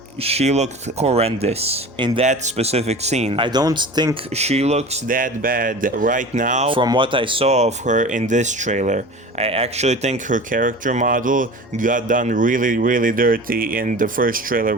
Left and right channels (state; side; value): normal; both; correlation 0.36